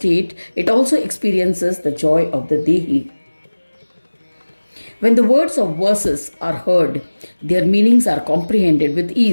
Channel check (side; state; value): both; inverted; correlation -1.00